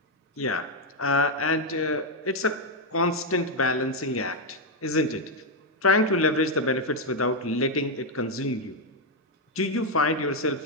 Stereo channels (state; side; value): normal; both; correlation 0.02